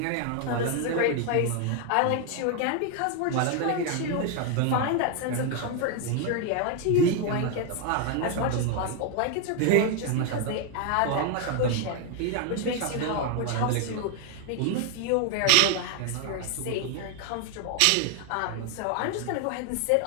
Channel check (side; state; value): both; different; correlation 0.01